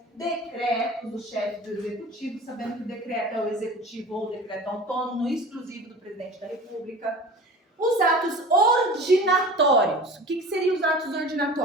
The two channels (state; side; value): normal; both; correlation 0.38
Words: decretos do chefe do executivo, sabendo que o decreto é o executivo ou o decreto autônomo, exclusivo do presidente da República. Os atos ordinatórios. O que seriam os atos